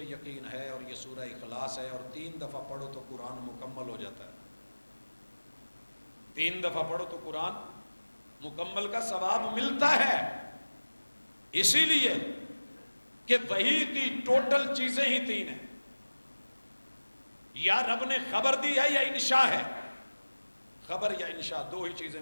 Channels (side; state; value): both; inverted; correlation -1.00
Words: یقین ہے اور یہ سورہ اخلاص ہے اور 3 دفعہ پڑھو تو قرآن مکمل ہو جاتا ہے۔ 3 دفعہ پڑھو تو قرآن مکمل کا ثواب ملتا ہے، اسی لیے کہ وحی کی ٹوٹل چیزیں ہی 3 ہیں، یا رب نے خبر دی ہے یا انشاء ہے۔ خبر یا انشاء 2 ہی چیزیں